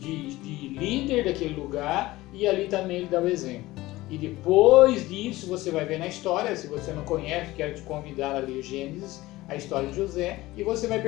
líder daquele lugar, e ali também ele dá o exemplo. E depois disso você vai ver na história, se você não conhece, quero te convidar a ler Gênesis, a história de José, e você vai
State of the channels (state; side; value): quieter; right; 18.4 dB